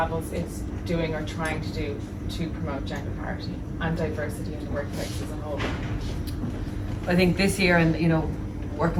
is doing or trying to do to promote gender parity and diversity in the workplace as a whole? I think this year, and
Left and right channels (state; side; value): identical; both; correlation 1.00